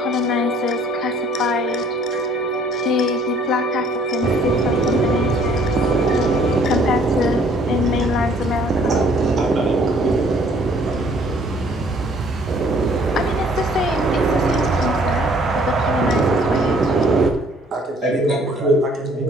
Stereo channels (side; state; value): both; normal; correlation 0.59